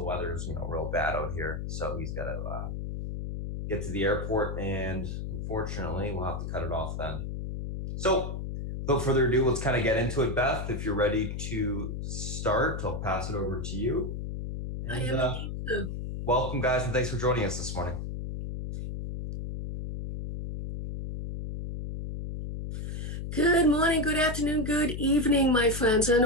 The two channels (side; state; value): left; noise; hum, 5 dB below the sound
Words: weather is, real bad out here. So he's got to get to the airport, and unfortunately we'll have to cut it off then. So without further ado, let's kind of get into it. Beth, if you're ready to start, I'll pass it over to you. And, I am indeed too. Welcome, guys, and thanks for joining us this morning. Good morning, good afternoon, good evening, my friends, and